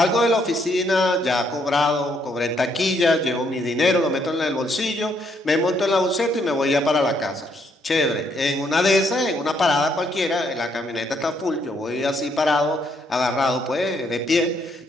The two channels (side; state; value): both; normal; correlation 0.72